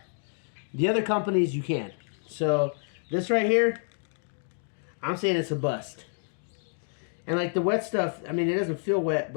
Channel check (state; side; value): silent; right; 59 dB below the other